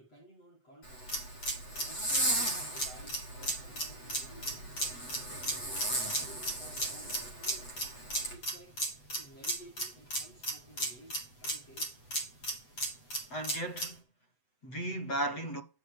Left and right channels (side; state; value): right; late; 8.0 ms